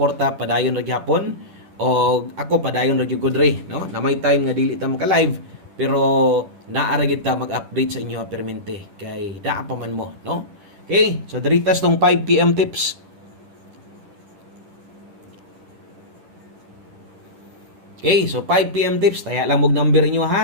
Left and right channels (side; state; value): left; late; 10 ms